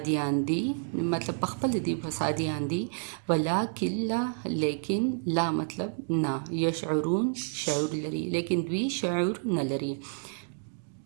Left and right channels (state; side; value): silent; left; digital silence